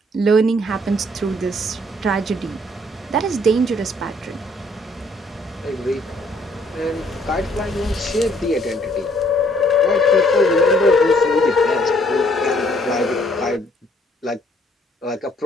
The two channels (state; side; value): normal; both; correlation 0.64